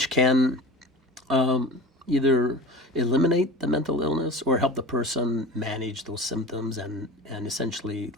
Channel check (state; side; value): normal; both; correlation 0.34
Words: can either eliminate the mental illness or help the person manage those symptoms and essentially